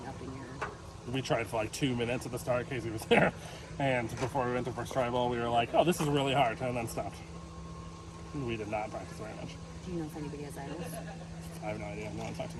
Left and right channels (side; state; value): both; identical; correlation 1.00